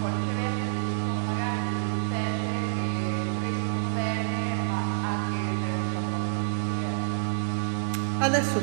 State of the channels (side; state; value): left; silent; digital silence